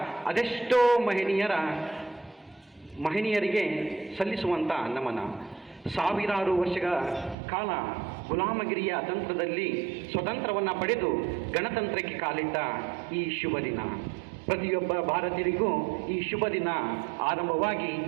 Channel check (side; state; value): left; drops out; at 7.4 s